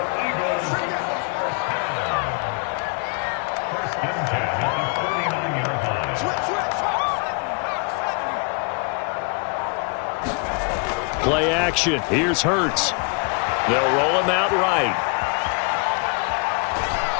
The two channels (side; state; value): right; quieter; 37.1 dB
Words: Play action. Here's Hurts. They'll roll him out right.